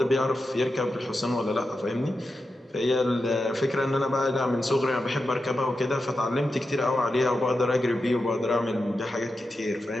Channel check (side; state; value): both; normal; correlation 0.90